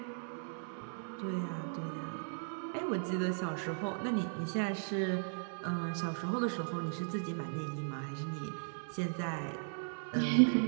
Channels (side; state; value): left; silent; digital silence